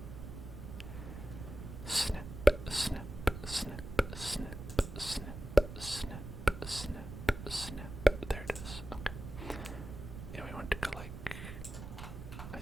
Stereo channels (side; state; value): right; noise; rumble, 10 dB below the sound